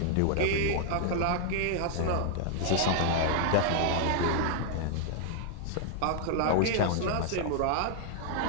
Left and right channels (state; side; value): different; both; correlation -0.01